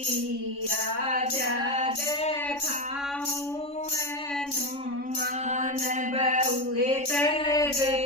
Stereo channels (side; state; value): right; late; 3.5 ms